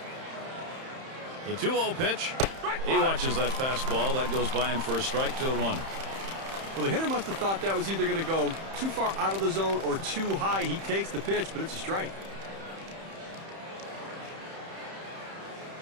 The 2-0 pitch. He watches that fastball. That goes by him for a strike. 2-1. Well, the hitter must have thought that was either going to go too far out of the zone or too high. He takes the pitch, but it's a strike.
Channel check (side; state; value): left; late; 31 ms